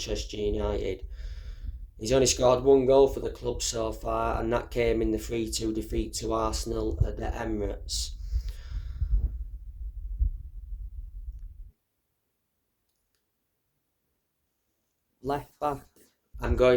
United. He's only scored one goal for the club so far, and that came in the 3-2 defeat to Arsenal at the Emirates. Left back, I'm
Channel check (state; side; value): identical; both; correlation 1.00